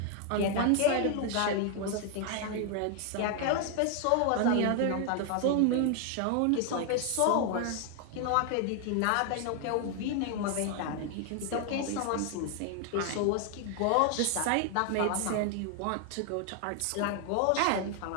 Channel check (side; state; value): both; different; correlation 0.00